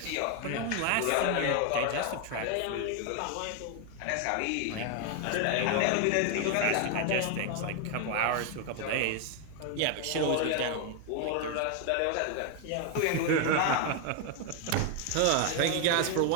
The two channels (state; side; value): different; both; correlation 0.00